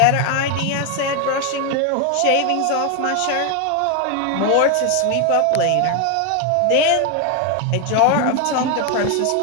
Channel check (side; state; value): both; different; correlation 0.01